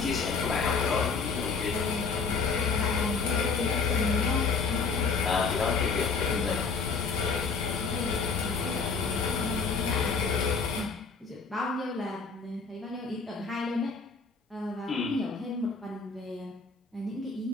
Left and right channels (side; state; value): right; quieter; 4.8 dB